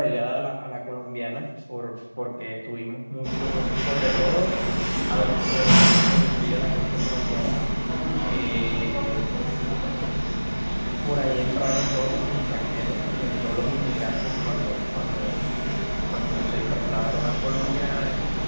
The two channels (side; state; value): both; inverted; correlation -1.00